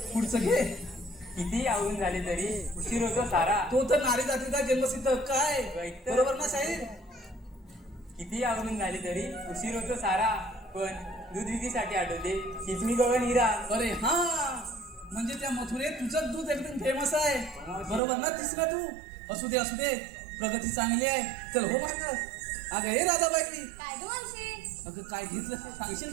पुढचं घे. किती आवरून झाले तरी उशीर होतो सारा. तो तर नारी जातीचा जन्मसिद्ध काय ऐकतं. बरोबर ना साहेब? किती आवरून झाले तरी उशीर होतो सारा, पण दूध विक्रीसाठी आठवते किचमी गवळण हिरा. अरे हा, म्हणजे त्या मथुरेत तुझं दूध एकदम फेमस आहे. बरोबर ना तिसरा तू? असू दे प्रगती चांगली आहे. चल हो माग. अगं हे राधाबाई, काय ग मावशी? अगं काय घेतलं ते सांगशील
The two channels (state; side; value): drops out; left; at 18.0 s